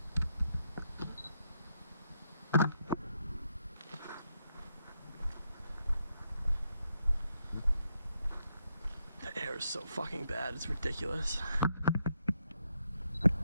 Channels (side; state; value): both; inverted; correlation -0.80